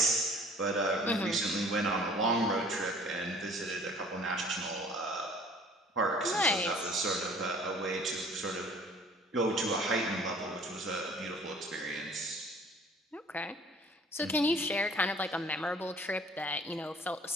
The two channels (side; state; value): both; normal; correlation 0.52